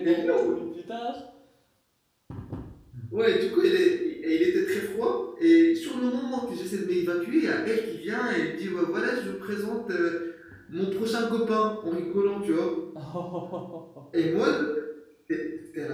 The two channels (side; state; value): both; identical; correlation 1.00